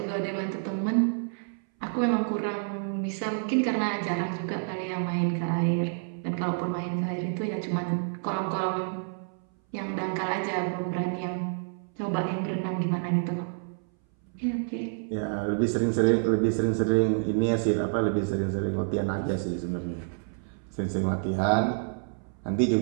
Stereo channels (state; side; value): silent; left; 59 dB below the other